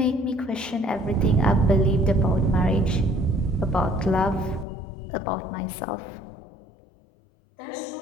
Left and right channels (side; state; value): right; drops out; at 4.7 s